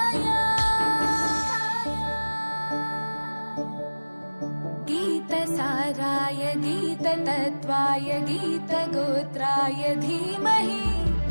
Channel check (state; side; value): inverted; both; correlation -1.00